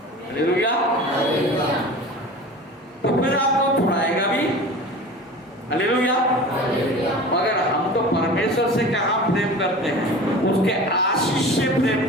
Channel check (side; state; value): both; normal; correlation 0.36